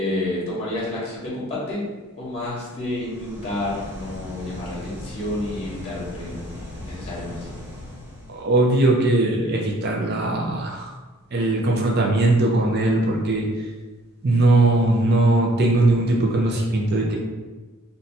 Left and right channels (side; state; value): both; normal; correlation 0.59